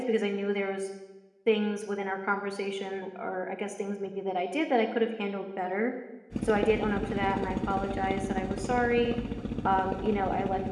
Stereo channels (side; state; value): both; identical; correlation 1.00